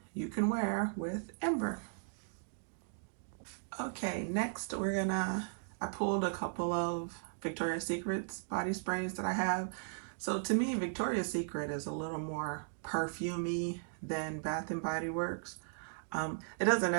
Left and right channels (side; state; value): left; silent; digital silence